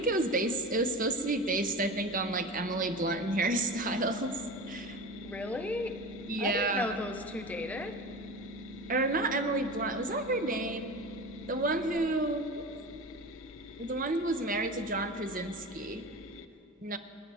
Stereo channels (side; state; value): both; normal; correlation 0.30